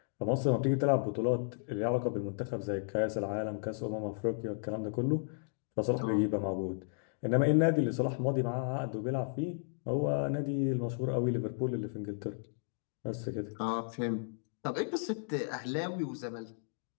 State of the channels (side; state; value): right; silent; digital silence